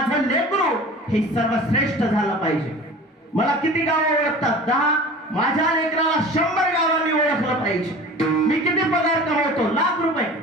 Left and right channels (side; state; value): both; normal; correlation 0.39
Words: लेकरू हे सर्वश्रेष्ठ झालं पाहिजे. मला किती गावं ओळखतात? 10. माझ्या लेकराला 100 गावांनी ओळखलं पाहिजे. मी किती पगार कमवतो? ₹1,00,000.